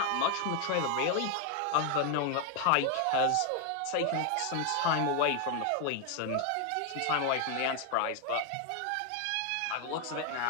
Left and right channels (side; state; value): both; different; correlation 0.01